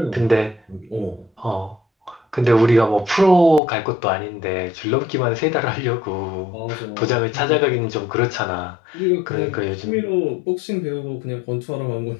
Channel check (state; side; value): drops out; right; at 3.6 s